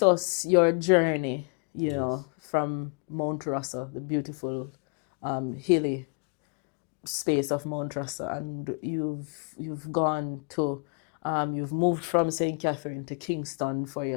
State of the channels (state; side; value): quieter; right; 36.3 dB